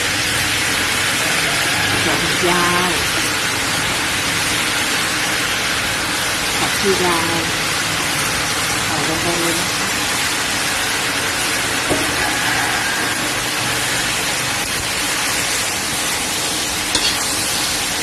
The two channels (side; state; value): both; identical; correlation 1.00